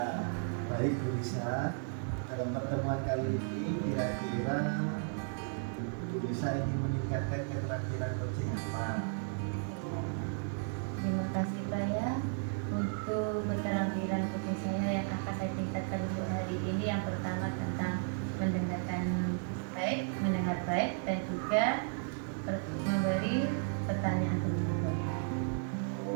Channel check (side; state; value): left; silent; 55 dB below the other